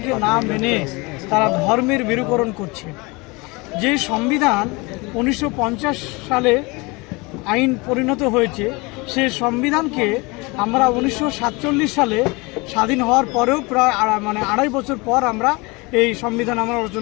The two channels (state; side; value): quieter; right; 25.8 dB